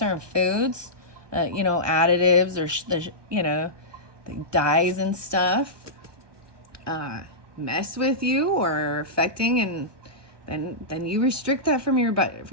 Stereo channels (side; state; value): left; late; 1.2 ms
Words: foods, you know, additives or, you know, the dyes and stuff, mess with you or are affecting, and then you restrict that from your